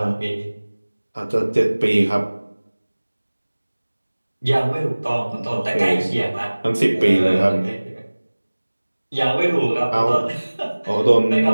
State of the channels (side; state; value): both; inverted; correlation -1.00